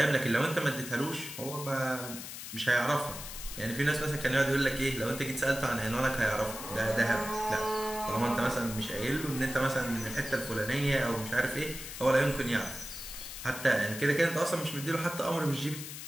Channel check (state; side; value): noise; left; hiss, 10 dB below the sound